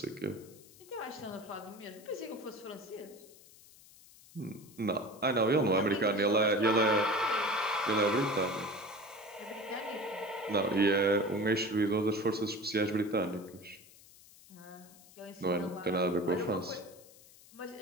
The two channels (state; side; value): noise; left; hiss, 23 dB below the sound